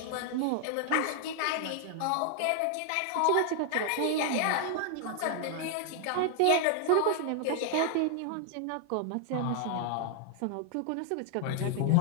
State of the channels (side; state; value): both; different; correlation 0.00